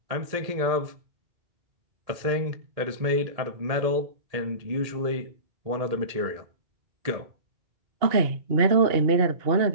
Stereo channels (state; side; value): late; left; 1.8 ms